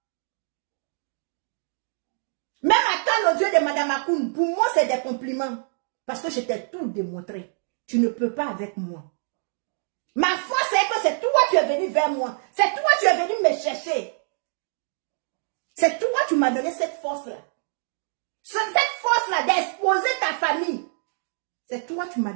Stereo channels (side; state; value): left; silent; digital silence